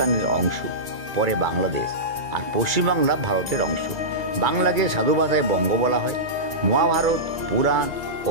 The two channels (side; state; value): left; late; 1.9 ms